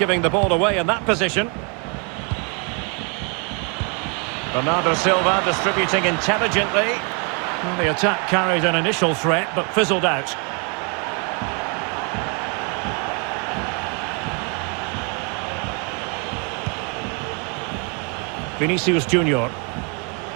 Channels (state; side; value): quieter; left; 35.4 dB